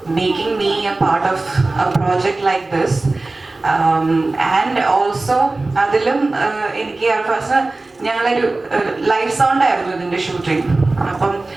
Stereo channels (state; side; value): quieter; left; 3.2 dB